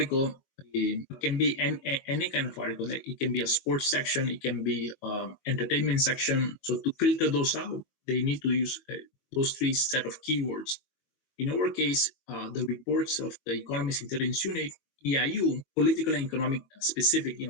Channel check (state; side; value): late; right; 22 ms